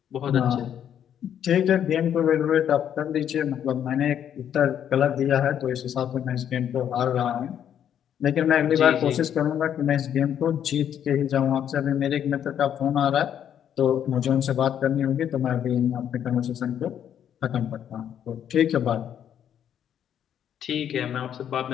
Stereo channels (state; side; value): quieter; right; 9.5 dB